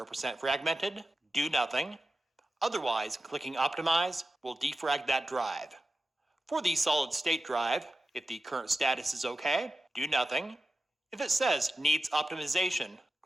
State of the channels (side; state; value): both; normal; correlation 0.92